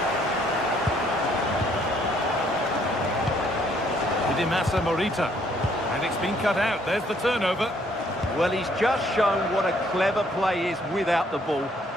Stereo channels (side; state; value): both; normal; correlation 0.66